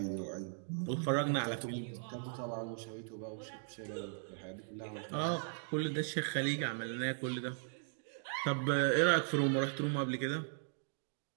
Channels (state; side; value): silent; left; digital silence